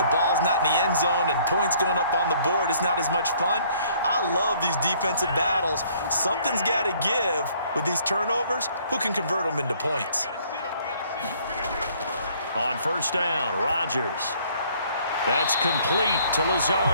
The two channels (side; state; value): both; inverted; correlation -0.60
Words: ball's not in the end zone and points going up on the board, it's not as much fun. I love these defensive battles. Something's got to give with these turnovers. Who can convert them into points? On first down, Rodgers. That's complete to